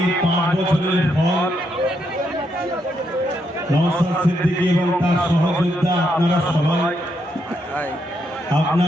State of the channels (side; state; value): both; normal; correlation 0.78